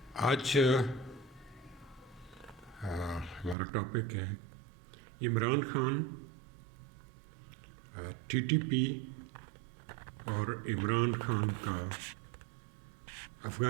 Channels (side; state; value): left; drops out; at 3.6 s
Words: آج ہمارا ٹاپک ہے Imran Khan, T T P اور عمران خان کا